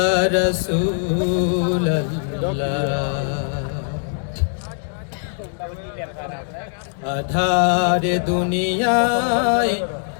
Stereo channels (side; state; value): right; silent; digital silence